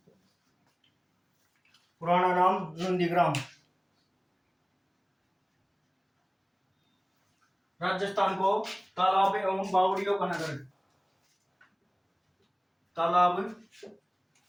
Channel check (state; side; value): identical; both; correlation 1.00